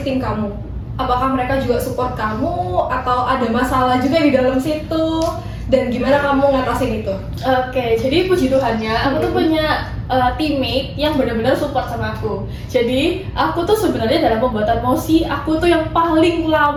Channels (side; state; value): both; identical; correlation 1.00